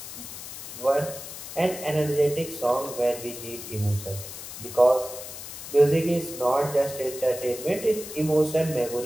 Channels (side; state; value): left; noise; hiss, 11 dB below the sound